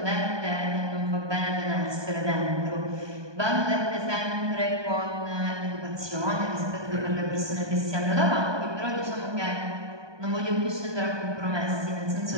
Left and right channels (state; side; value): late; left; 1.2 ms